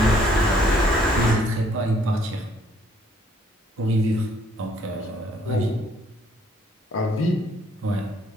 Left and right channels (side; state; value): both; normal; correlation 0.65